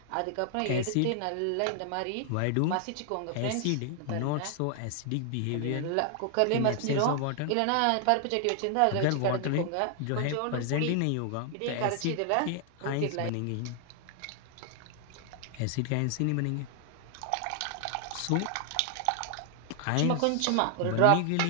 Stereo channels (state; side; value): different; both; correlation 0.00